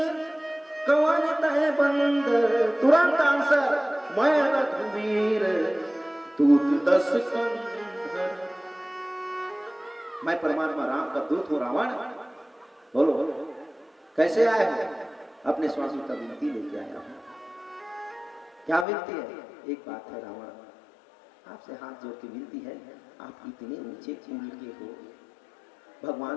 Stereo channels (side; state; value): right; drops out; at 18.9 s